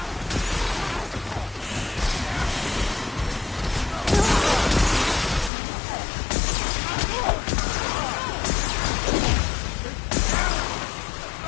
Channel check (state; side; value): drops out; right; at 5.5 s